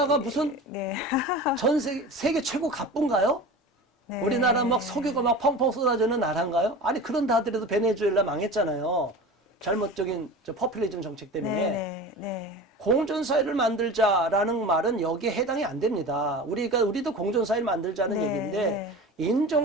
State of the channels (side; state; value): both; normal; correlation 0.34